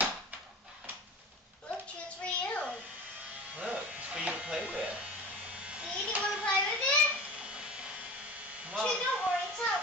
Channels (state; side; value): normal; both; correlation 0.35